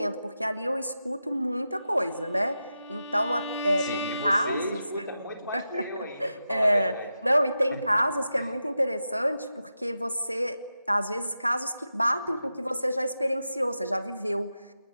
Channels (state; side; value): inverted; both; correlation -0.90